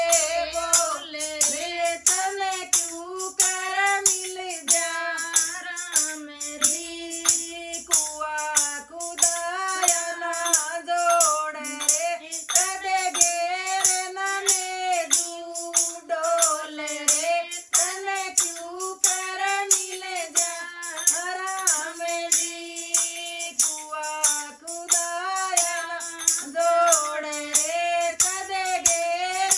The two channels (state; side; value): identical; both; correlation 1.00